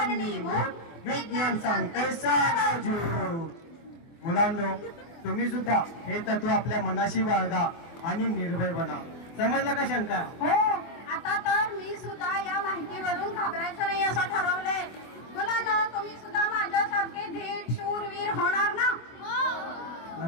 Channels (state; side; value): late; right; 24 ms